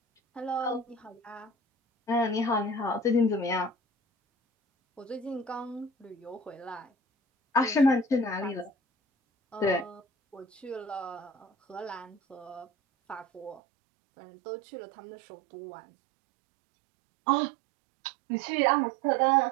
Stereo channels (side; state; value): left; drops out; at 13.6 s